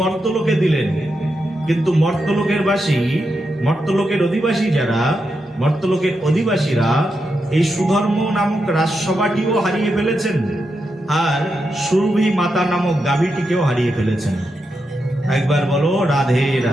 মর্তলোকে দিলেন। কিন্তু মর্তলোকের অধিবাসীরা এই সুধর্ম নামক রাজসভাটিও হারিয়ে ফেলেছেন, আর সুরভি মাতা নামক গাভীটিকেও হারিয়ে ফেলেছেন। একবার বলো রাধে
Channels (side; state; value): both; normal; correlation 0.85